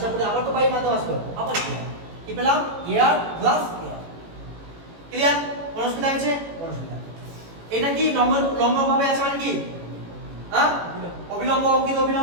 করে আবার তো বায়ুর মাধ্যমে আসলো, আবার এয়ার, কি পেলাম, এয়ার গ্লাস এয়ার, ক্লিয়ার, কোন অসুবিধা আছে, কোন অসুবিধা। এটা কি লম্ব ভাবে আছে মানে কি, হ্যাঁ, অবিলম্ব, অঙ্কিত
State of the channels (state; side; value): late; left; 18 ms